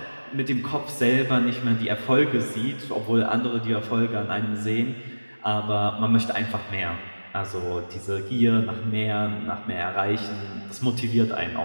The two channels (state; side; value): inverted; both; correlation -1.00